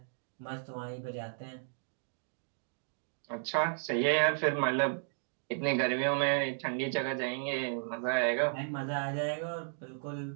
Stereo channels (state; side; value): silent; left; digital silence